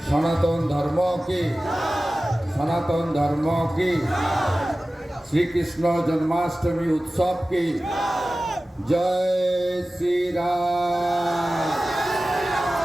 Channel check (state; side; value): normal; both; correlation 0.96